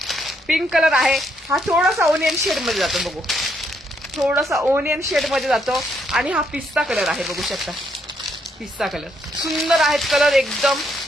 पिंक कलर आहे. हा थोडासा ओनियन शेड मध्ये जातो. बघू थोडासा ओनियन शेड मध्ये जातो. आणि हा पिस्ता कलर आहे बघू शकता. पिस्ता कलर सुंदर आहेत कलर एकदम.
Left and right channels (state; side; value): normal; both; correlation 0.74